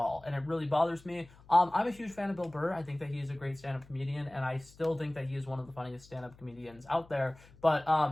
And it really bothers me. I'm a huge fan of Bill Burr. I think that he is a great stand-up comedian, and I still think that he is one of the funniest stand-up comedians out there.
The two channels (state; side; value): noise; left; hum, 24 dB below the sound